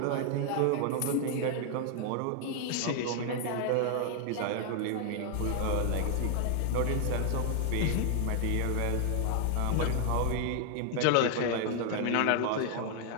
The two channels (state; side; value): different; both; correlation 0.00